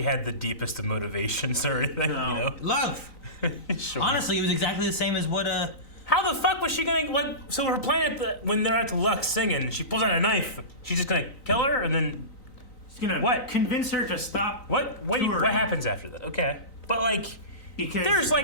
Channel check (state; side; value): late; right; 3.9 ms